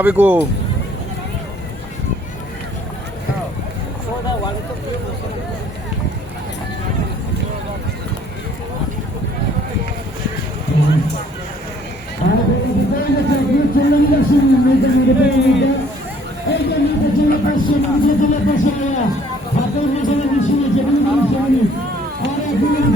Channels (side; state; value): both; normal; correlation 0.59